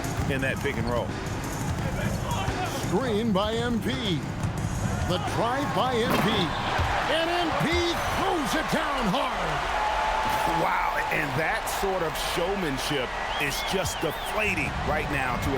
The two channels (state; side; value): identical; both; correlation 1.00